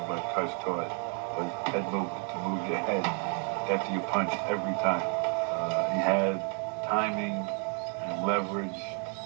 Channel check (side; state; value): left; quieter; 39.9 dB